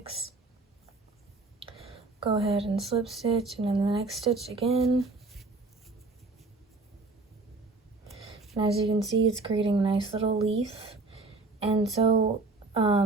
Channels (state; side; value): quieter; left; 3.5 dB